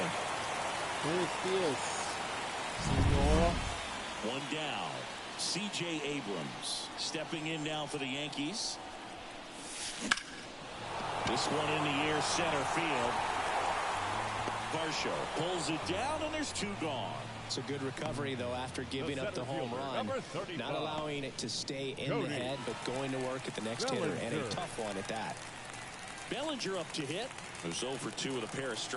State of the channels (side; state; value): both; identical; correlation 1.00